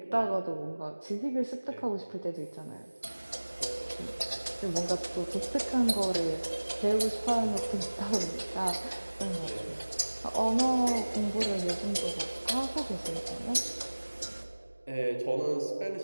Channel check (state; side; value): inverted; both; correlation -1.00